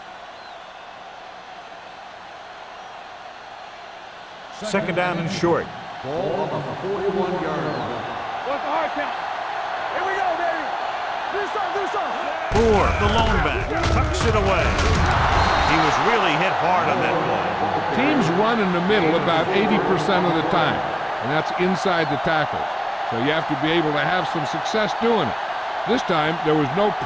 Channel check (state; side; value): identical; both; correlation 1.00